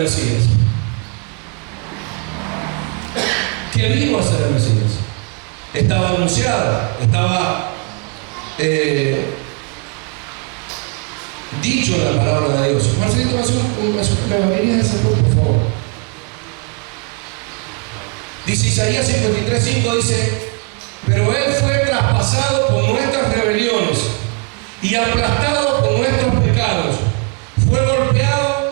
Mesías. ¿Qué vino a ser el Mesías? Estaba anunciada, estaba dicho en la palabra de Dios. Marcelito, ¿me venía a ese por favor? Dice Isaías 53:5, dice, pero Él fue traspasado por nuestras rebeliones y aplastado por nuestros pecados. Fue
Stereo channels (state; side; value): quieter; left; 32.6 dB